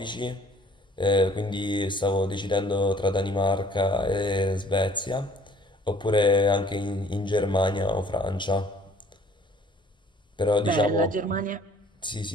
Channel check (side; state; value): both; normal; correlation 0.56